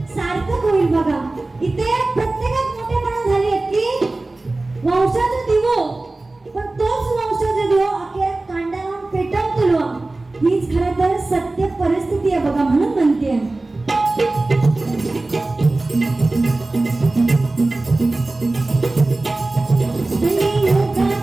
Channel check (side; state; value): left; quieter; 3.1 dB